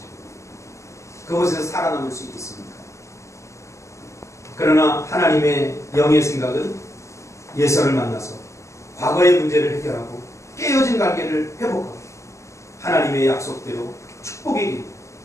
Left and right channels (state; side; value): late; right; 0.14 ms